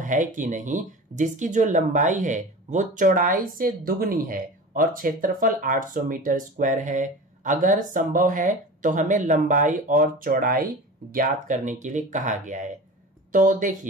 कि नहीं जिसकी जो लंबाई है वो चौड़ाई से दुगनी है और क्षेत्रफल 800 मीटर स्क्वायर है। अगर संभव है तो हमें लंबाई और चौड़ाई ज्ञात करने के लिए कहा गया है। तो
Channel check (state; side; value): normal; both; correlation 0.34